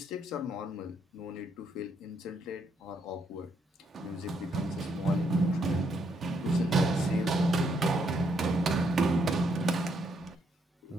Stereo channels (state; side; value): normal; both; correlation 0.74